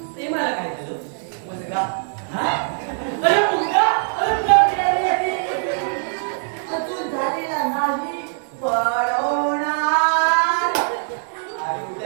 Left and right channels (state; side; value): silent; left; 64 dB below the other